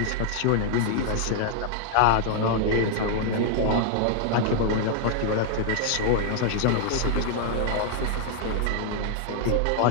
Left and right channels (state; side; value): different; both; correlation -0.01